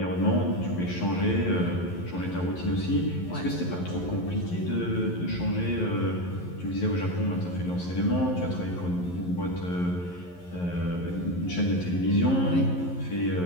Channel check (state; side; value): late; right; 11 ms